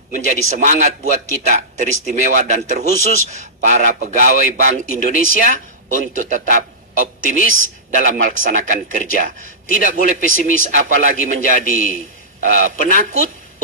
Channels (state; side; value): normal; both; correlation -0.17